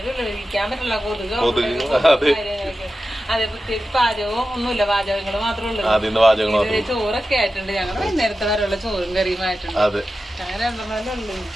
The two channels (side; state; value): both; normal; correlation 0.93